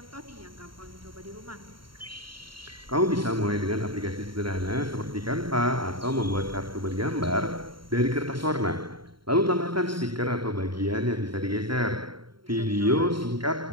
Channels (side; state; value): left; late; 0.73 ms